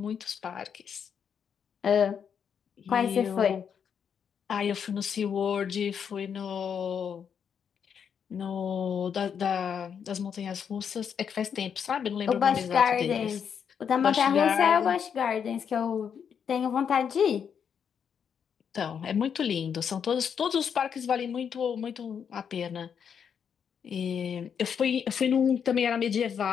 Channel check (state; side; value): quieter; right; 7.5 dB